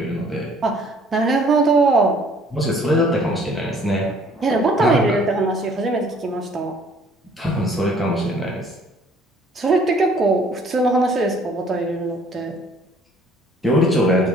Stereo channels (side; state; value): both; normal; correlation 0.57